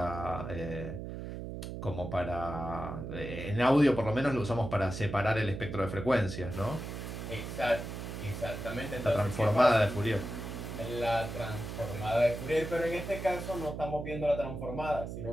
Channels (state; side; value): noise; right; hum, 7 dB below the sound